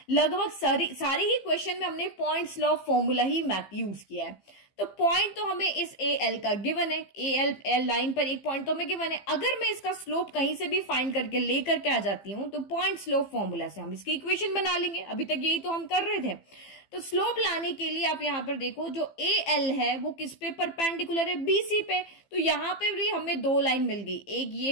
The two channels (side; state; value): right; late; 15 ms